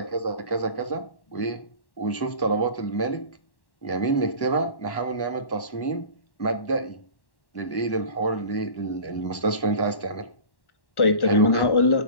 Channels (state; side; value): late; right; 1.1 ms